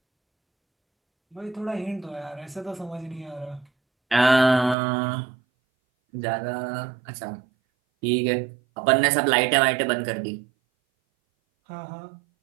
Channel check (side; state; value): left; drops out; at 4.8 s